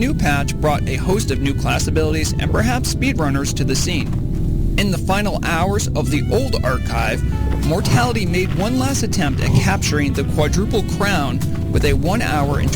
patch brought a host of new class abilities and perhaps speedrunners to the scene. In the final hours of the old archive, Mortality made one last attempt at capturing the quadruple crown with a 1 hour and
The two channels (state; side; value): identical; both; correlation 1.00